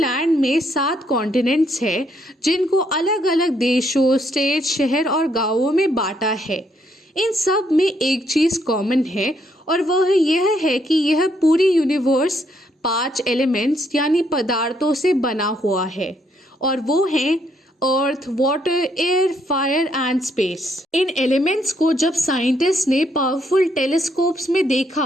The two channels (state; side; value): normal; both; correlation 0.72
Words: में 7 कॉन्टिनेंट्स हैं, जिनको अलग अलग देशों, स्टेट, शहर और गांवों में बांटा है। इन सब में एक चीज़ कॉमन है और वह यह है कि यह पूरी यूनिवर्स 5 एलिमेंट्स यानी पदार्थों से बना हुआ है, और वो हैं earth, water, air, fire and space. इन एलिमेंट्स को जब साइंटिस्ट ने पावरफुल टेलीस्कोप्स में